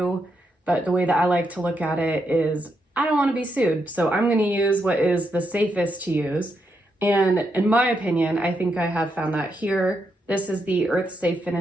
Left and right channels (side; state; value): both; normal; correlation 0.81